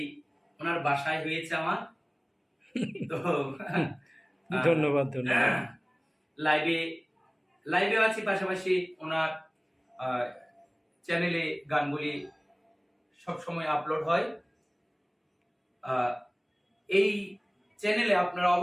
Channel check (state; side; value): identical; both; correlation 1.00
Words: ওনার বাসায় হয়েছে আমার। তো ধন্যবাদ ধন্যবাদ। লাইভে আছি, পাশাপাশি ওনার চ্যানেলে গানগুলি সবসময় আপলোড হয়। এই চ্যানেলে আপনারা